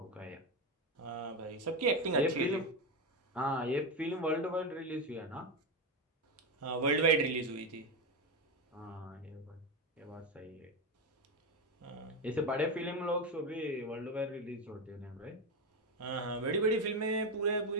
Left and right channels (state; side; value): normal; both; correlation 0.13